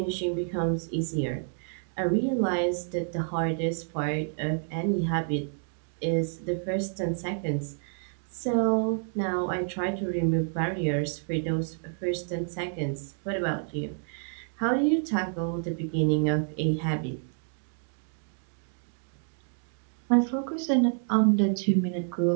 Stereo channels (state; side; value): silent; left; 59 dB below the other